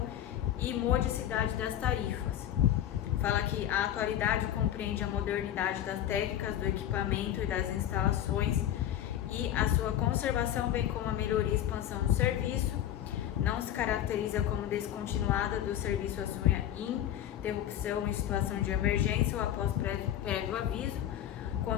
e modicidade das tarifas. Fala que a atualidade compreende a modernidade das técnicas, do equipamento e das instalações e a sua conservação, bem como a melhoria e expansão do serviço. Não se caracteriza como descontinuada do serviço, assume a interrupção em situação de emergência ou após prévio aviso,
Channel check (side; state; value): right; quieter; 11.3 dB